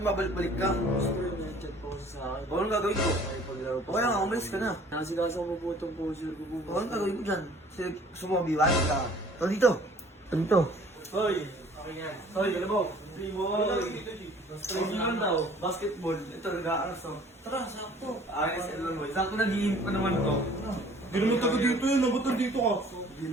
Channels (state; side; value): normal; both; correlation 0.52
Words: mabalik-balik ka. Chat po sa akin. Anong gagawin ko? Paglaro po. Okay lang, umalis ka na. Inasigas ako po itong poser ko po. Anong gagawin ko dyan? Gusto mo mabiwan ka. Ito dito. Ito dito. Hoy! Hoy, galabaw! Training lang daw, basketball. Ito, nag-aaras to. Tara, sakto. Ayos, ito mo. Sakto nag-iinip pa naman to. Hindi naman taga dito yun, ba't nandito ka? Hindi